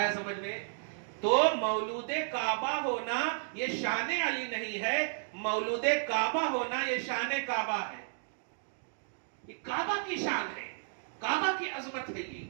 سمجھ میں؟ تو مولود کعبہ ہونا یہ شان علی نہیں ہے, مولود کعبہ ہونا یہ شان کعبہ ہے. یہ کعبہ کی شان ہے, کعبہ کی عظمت ہے. یہ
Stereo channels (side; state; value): left; silent; digital silence